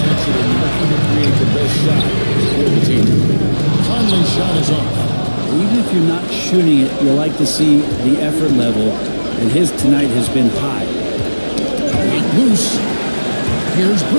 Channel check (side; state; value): both; inverted; correlation -1.00